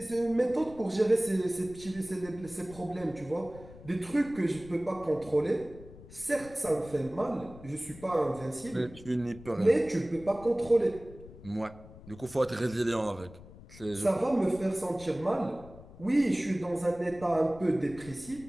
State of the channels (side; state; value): left; noise; rumble, 18 dB below the sound